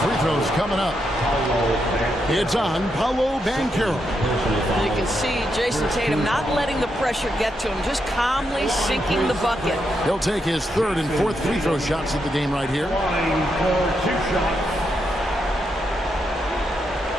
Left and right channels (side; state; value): both; normal; correlation 0.82